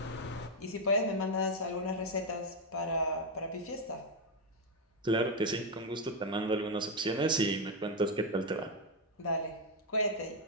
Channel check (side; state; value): both; normal; correlation 0.05